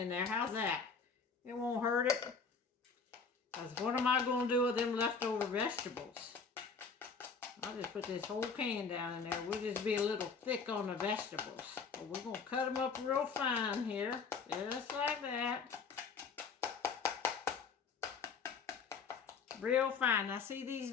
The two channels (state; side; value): quieter; right; 5.3 dB